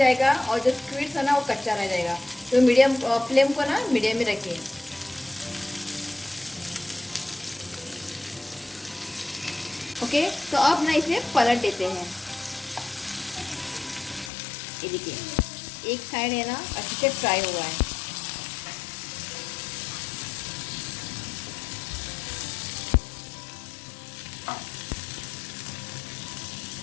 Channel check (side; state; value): right; drops out; at 14.3 s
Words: और जो स्क्वीड्स है ना वो कच्चा रह जाएगा। तो मीडियम फ्लेम को ना मीडियम में रखिए। ओके, तो अब ना इसे पलट देते हैं। ये देखिए एक साइड है ना अच्छे से फ्राई हुआ है।